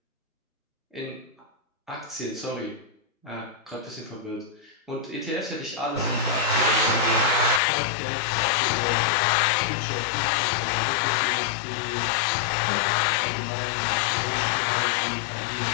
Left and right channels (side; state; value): right; drops out; at 7.6 s